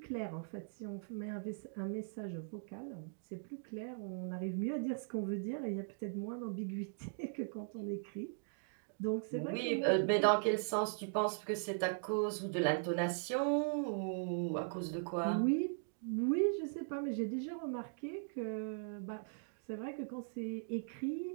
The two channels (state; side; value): silent; left; digital silence